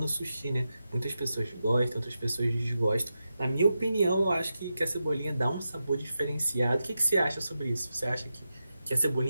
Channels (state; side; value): inverted; both; correlation -0.89